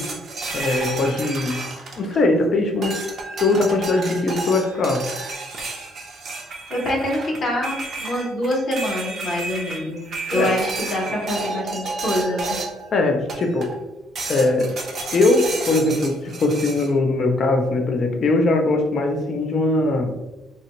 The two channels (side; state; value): both; normal; correlation 0.67